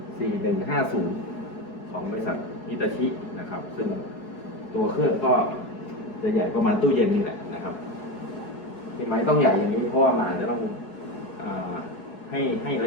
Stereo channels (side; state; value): right; late; 4.7 ms